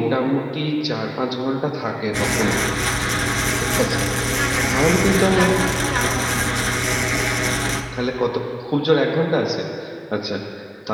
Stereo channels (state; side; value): identical; both; correlation 1.00